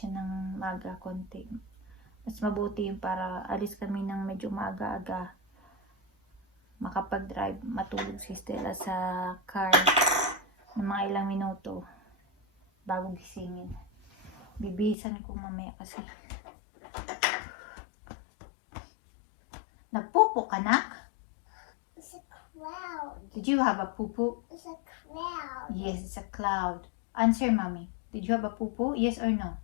ng maaga konti. Mas mabuti yung para alis kami ng medyo maaga-aga. Makapag-drive, matulog si Stella sa car ng mga ilang minuto bago gisingin. Bibisan ko mamaya kasi. Nagpupo ka, nak? It's a cloud. Did you have a pupu? It's a cloud. Yes, it's a cloud. Answer, mommy. Did you have a pupu? Yes or no?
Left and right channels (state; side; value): drops out; right; at 15.0 s